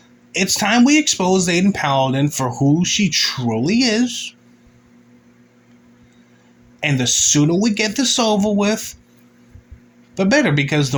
It's time we expose Aydin Paladin for who she truly is. And the sooner we get this over with, the better, because the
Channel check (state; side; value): identical; both; correlation 1.00